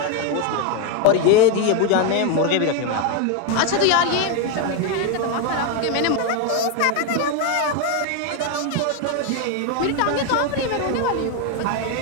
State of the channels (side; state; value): both; different; correlation 0.02